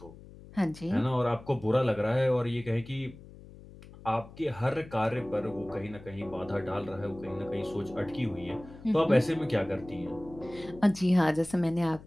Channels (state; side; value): noise; left; hum, 18 dB below the sound